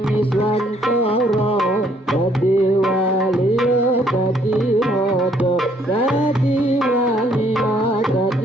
Iswantara dadi wali dadi raja dadi wali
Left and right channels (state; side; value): normal; both; correlation 0.65